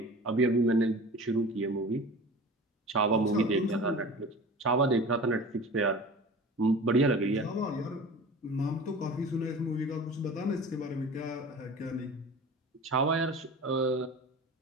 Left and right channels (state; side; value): normal; both; correlation 0.38